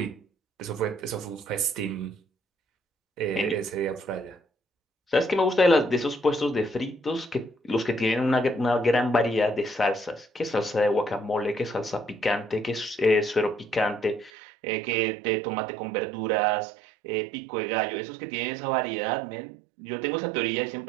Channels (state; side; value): drops out; left; at 14.3 s